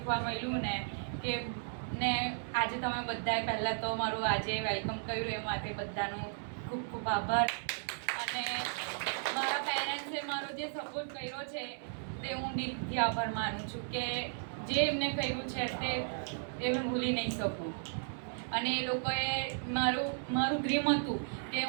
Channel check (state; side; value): silent; left; 54 dB below the other